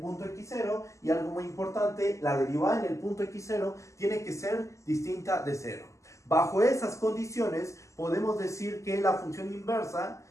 x0 y algo muy importante, la derivada en el punto x0 tiene que ser distinta de 0. Bajo esas condiciones podemos decir que la función inversa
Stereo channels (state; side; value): late; right; 0.15 ms